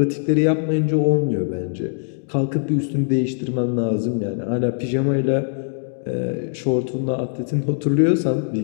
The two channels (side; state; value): right; silent; digital silence